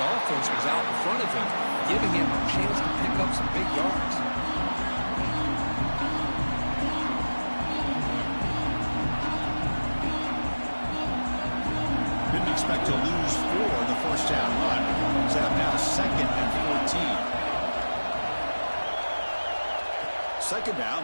offense was out in front of him, giving him a chance to pick up some big yards. Expect to lose 4 in the 1st down run. Set up now 2nd and 14. 2nd down,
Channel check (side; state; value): both; inverted; correlation -1.00